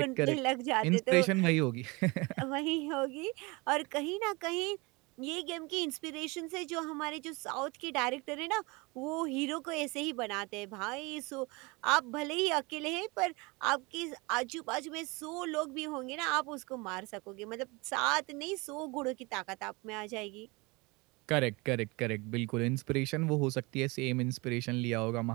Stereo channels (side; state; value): left; quieter; 26.2 dB